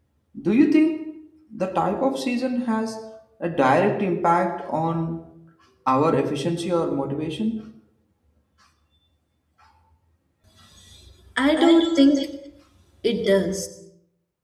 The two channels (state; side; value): identical; both; correlation 1.00